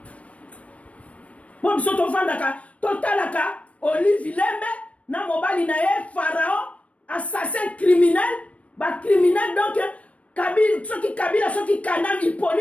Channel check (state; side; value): late; right; 0.064 ms